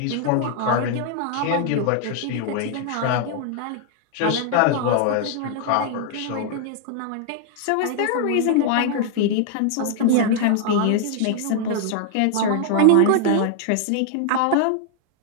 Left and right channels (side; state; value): both; different; correlation 0.00